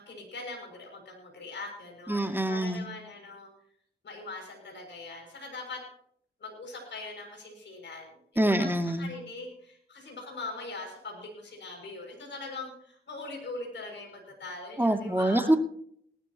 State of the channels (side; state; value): both; normal; correlation 0.77